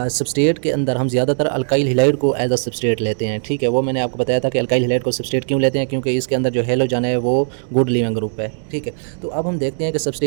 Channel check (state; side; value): silent; left; digital silence